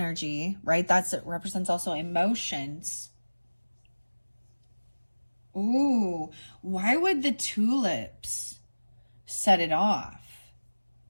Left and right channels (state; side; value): inverted; both; correlation -1.00